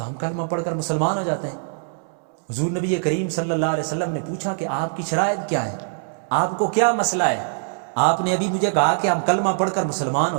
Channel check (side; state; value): left; silent; 64 dB below the other